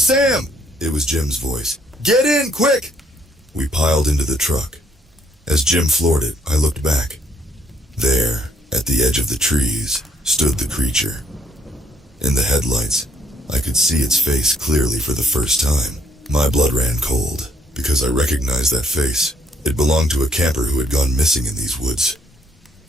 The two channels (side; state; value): both; normal; correlation 0.67